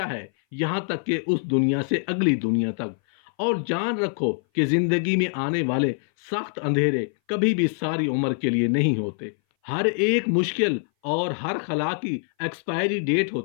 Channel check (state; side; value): silent; right; 59 dB below the other